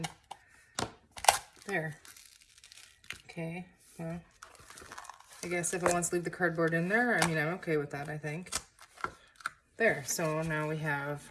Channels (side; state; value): both; identical; correlation 1.00